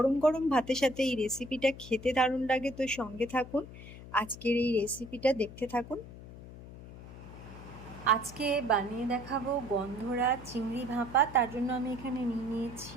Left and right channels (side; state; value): left; noise; hum, 15 dB below the sound